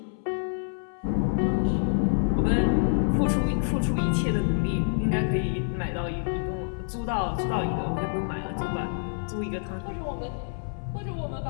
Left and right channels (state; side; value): silent; right; 60 dB below the other